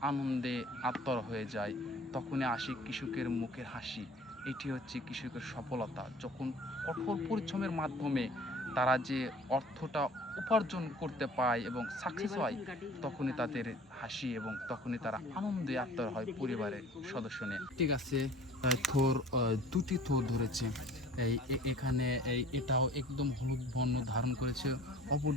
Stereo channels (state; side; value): normal; both; correlation 0.47